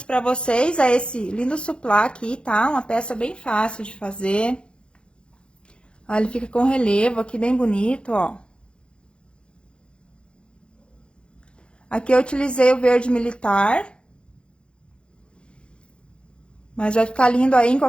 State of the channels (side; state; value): right; late; 0.055 ms